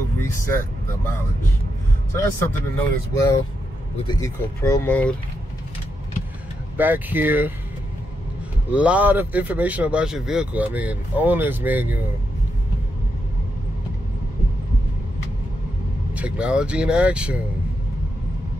reset the mileage. So that's something to note as well with the Eco Pro mode. Back here, a lot of information about your vehicle. I mean, owner's manual, technology in action.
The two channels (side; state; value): both; normal; correlation 0.83